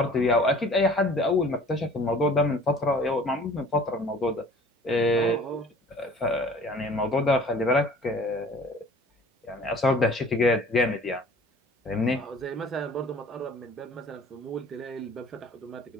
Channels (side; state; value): both; normal; correlation 0.49